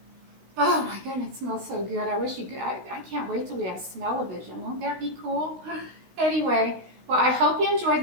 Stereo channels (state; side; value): late; left; 16 ms